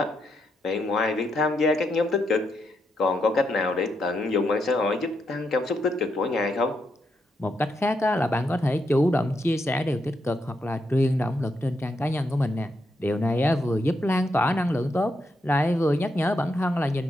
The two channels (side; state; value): both; normal; correlation 0.81